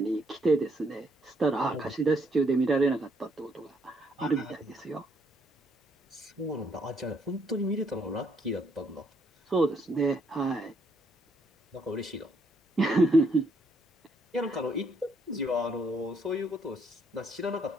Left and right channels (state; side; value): normal; both; correlation 0.71